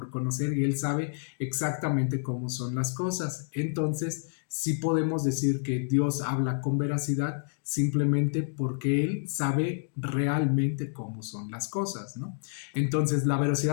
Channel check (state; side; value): silent; right; digital silence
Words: conocer y Él sabe exactamente cómo son las cosas. Entonces, sí podemos decir que Dios habla con veracidad simplemente porque Él sabe realmente cómo son las cosas, ¿no? Entonces, la